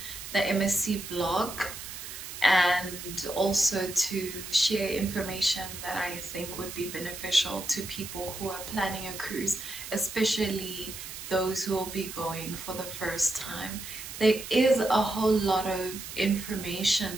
the MSC vlog, and also to share information that I think would be beneficial to people who are planning a cruise, especially those who will be going for the first time. There is a whole lot of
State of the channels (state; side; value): noise; right; hiss, 10 dB below the sound